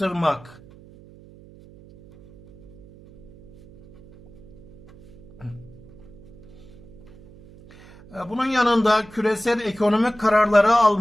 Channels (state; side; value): noise; right; hum, 22 dB below the sound